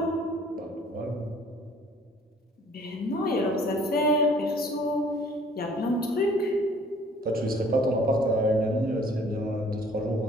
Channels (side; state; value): both; normal; correlation 0.55